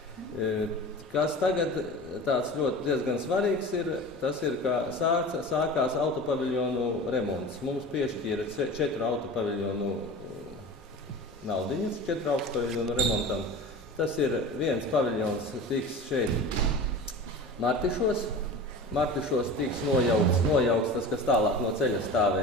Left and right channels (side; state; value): both; normal; correlation 0.34